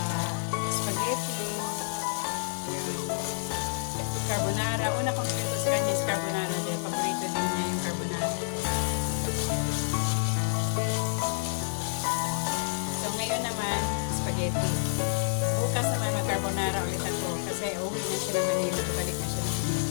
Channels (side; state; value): right; silent; digital silence